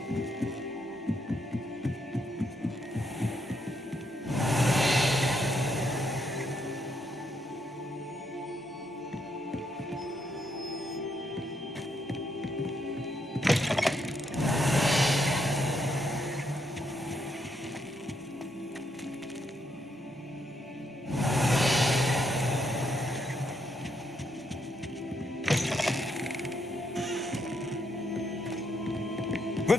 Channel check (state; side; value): normal; both; correlation 0.76